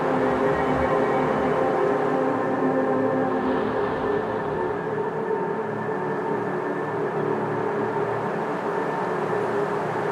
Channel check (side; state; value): both; identical; correlation 1.00